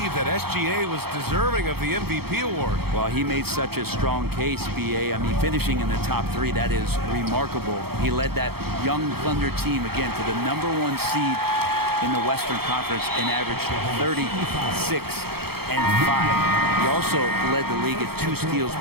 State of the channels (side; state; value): left; late; 0.96 ms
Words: that SGA was deserving of the MVP award. Well, he made such a strong case, BA. I mean, finishing in the top 3, that is remarkable. He led that young Thunder team, again, to the #1 seed in the Western Conference and averaged 36 and 5. He also led the league at 2 steals